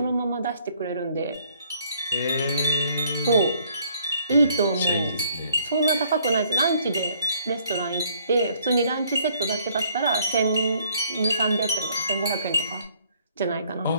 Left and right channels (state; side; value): inverted; both; correlation -0.65